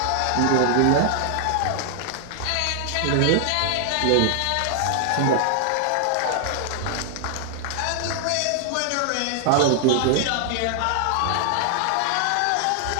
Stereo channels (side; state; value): both; different; correlation 0.00